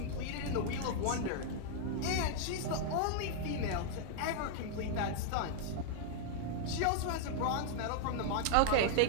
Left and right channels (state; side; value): different; both; correlation -0.01